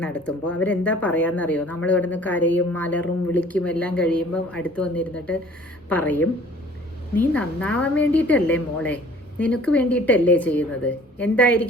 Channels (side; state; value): both; normal; correlation 0.51